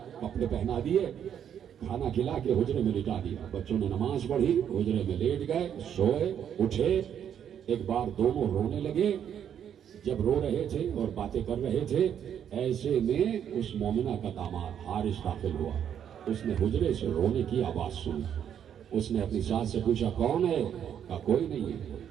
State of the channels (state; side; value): quieter; left; 9.0 dB